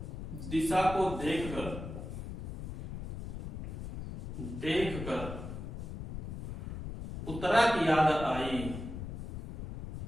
दिशा को देखकर उत्तरा की याद आई,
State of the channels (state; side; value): noise; left; rumble, 7 dB below the sound